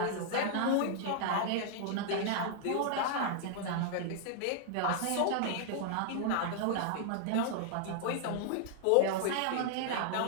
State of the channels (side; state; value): both; different; correlation -0.01